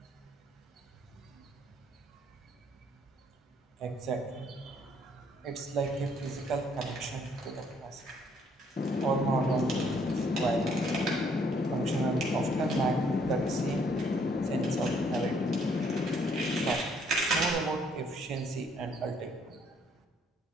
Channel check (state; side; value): normal; both; correlation 0.66